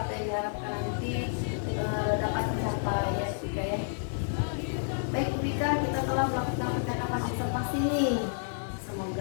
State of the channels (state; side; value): silent; right; digital silence